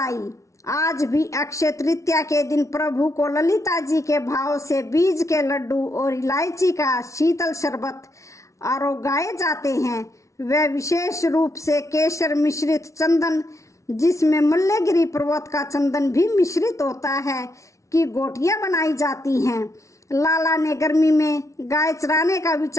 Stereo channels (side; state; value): right; late; 0.14 ms